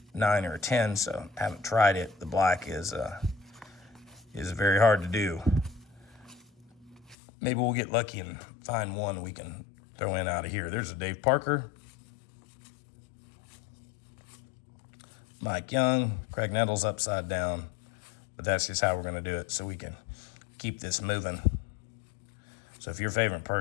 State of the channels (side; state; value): right; drops out; at 7.2 s